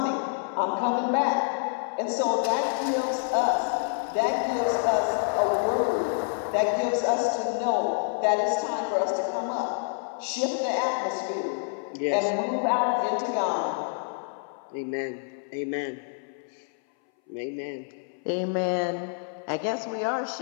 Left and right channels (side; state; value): right; silent; 59 dB below the other